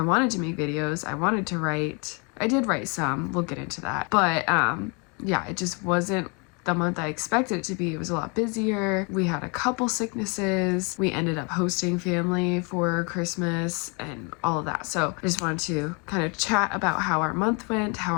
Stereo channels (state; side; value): quieter; right; 33.0 dB